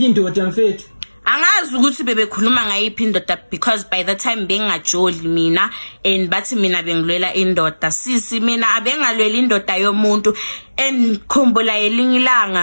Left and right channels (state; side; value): inverted; both; correlation -1.00